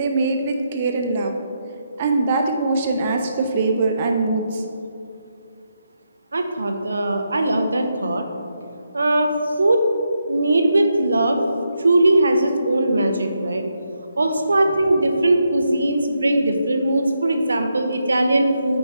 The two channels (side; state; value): both; inverted; correlation -0.82